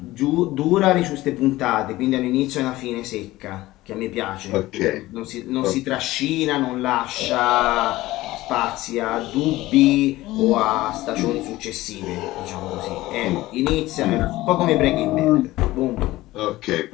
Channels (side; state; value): right; quieter; 17.5 dB